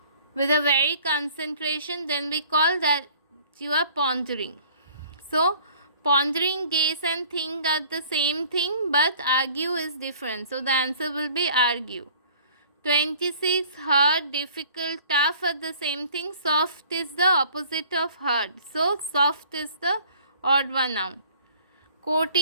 with a very concentration, then we call that you are pondering. So pondering, gaze and think are the same thing, but argue is different. So the answer will be argue. 26, hard, difficult, tough are the same thing. Soft is the opposite of hard. So soft is the odd one out.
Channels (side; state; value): both; inverted; correlation -0.53